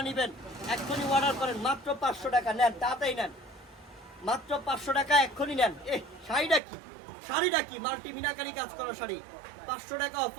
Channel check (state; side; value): drops out; left; at 6.6 s